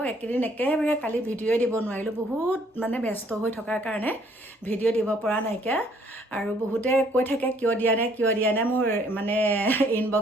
একেদিন একেবাৰে কালি ভিডিঅ'ই দিব নোৱাৰিলোঁ বহুত মানে ব্যস্ত হৈ থকাৰ কাৰণে ভিডিঅ' দিব পৰা নাইকিয়া আৰু বহুতে কৈ থাকে কিয় দিয়া নাই মোৰ মানে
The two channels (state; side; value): normal; both; correlation 0.63